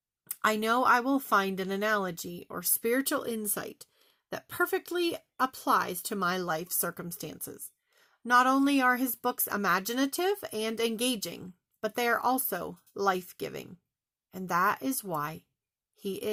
I know I will find an analogy or spiritual insight that perfectly applies to my life circumstances. Not only are his books imaginative and engaging, but they are also life-giving. And that is why he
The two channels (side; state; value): both; identical; correlation 1.00